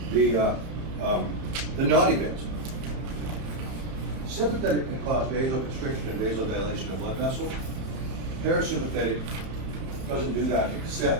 the naughty bits. Sympathetic can cause vasoconstriction and vasodilation of blood vessels. Parasympathetic doesn't do that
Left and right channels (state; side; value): late; left; 32 ms